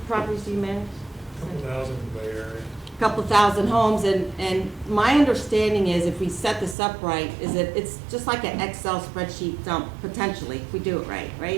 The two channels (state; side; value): drops out; left; at 6.8 s